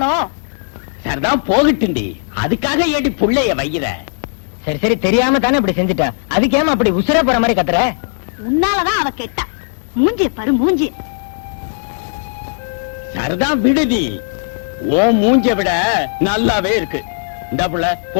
சரிதான் போகட்டுண்டி, அதுக்காக ஏடி புள்ளைய வைக்கிற? சரி சரி தெரியாம தானே இப்படி செஞ்சுட்டா. அதுக்கு ஏமா அப்படி உசுர போற மாதிரி கத்துற? உன்னாலதான் அவ கெட்டா. மூஞ்சி பாரு மூஞ்சி. சரிதான் விடுதி, ஓ மூஞ்ச விட நல்லாவே இருக்கு. இந்த புள்ள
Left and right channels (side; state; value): right; silent; digital silence